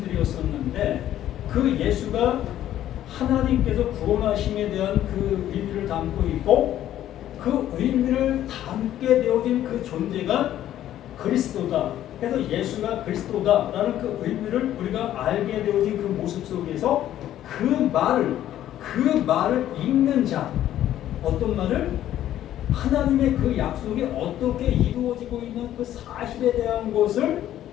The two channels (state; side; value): quieter; right; 12.2 dB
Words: 그 예수가 하나님께서 구원하심에 대한 그 의미를 담고 있고 그 의미를 담게 되어진 그 존재가 그리스도다. 그래서 예수가 그리스도다라는 그 의미를 우리가 알게 되어진 그 모습 속에서 그 말을 읽는 자, 어떤 말을? 하나님의 그 약속이 어떻게 이루어지고 있는 그 사실에 대한 것을